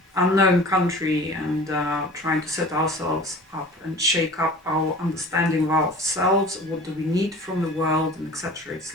unknown country, and trying to set ourselves up and shake up our understanding of ourselves. What do we need from the world, and etc. It's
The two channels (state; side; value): normal; both; correlation 0.42